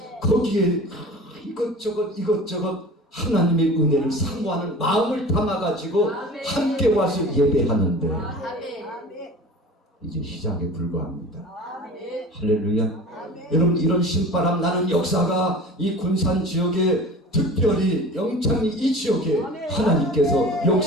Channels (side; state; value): both; normal; correlation 0.39